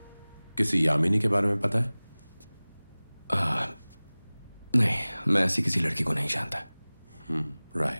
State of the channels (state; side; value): inverted; both; correlation -1.00